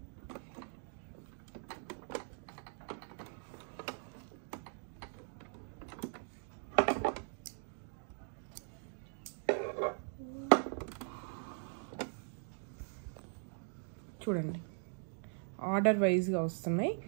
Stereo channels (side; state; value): left; silent; 51 dB below the other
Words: చూడండి ఆర్డర్ వైజ్గా వస్తున్నాయి.